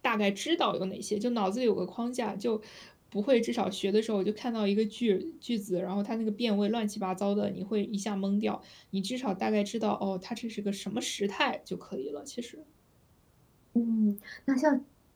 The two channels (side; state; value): both; identical; correlation 1.00